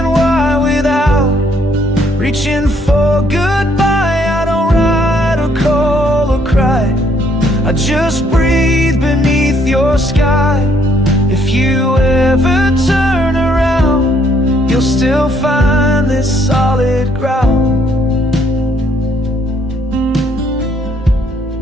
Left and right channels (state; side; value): normal; both; correlation 0.67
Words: why, without reaching for goodbye. I don't write or call or cry, I just breathe beneath your sky. If you ever turn around, you'll still find this solid ground.